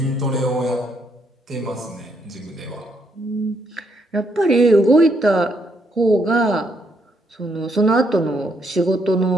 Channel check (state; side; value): normal; both; correlation 0.74